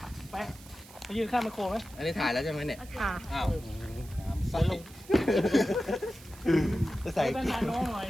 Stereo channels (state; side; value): noise; right; hiss, 20 dB below the sound